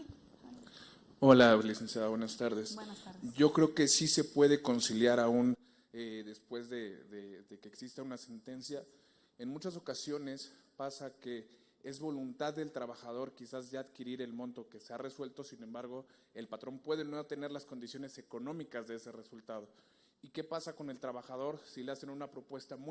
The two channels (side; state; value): both; identical; correlation 1.00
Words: Hola, licenciada, buenas tardes. Buenas tardes. Yo creo que sí se puede conciliar aún después de que exista una sentencia. En muchas ocasiones pasa que es voluntad del trabajador quizás ya adquirir el monto que se ha resuelto, sin embargo, el patrón puede no tener las condiciones económicas de ese resultado. ¿Y qué pasa con el trabajador si le hacen una propuesta